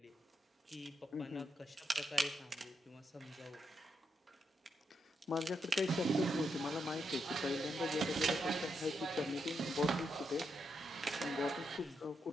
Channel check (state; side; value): normal; both; correlation 0.81